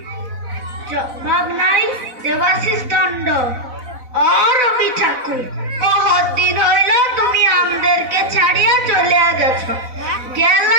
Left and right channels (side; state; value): left; late; 4.0 ms